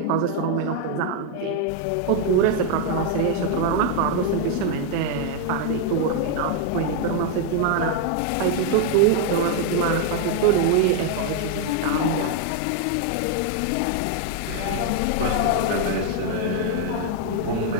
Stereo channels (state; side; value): different; both; correlation 0.00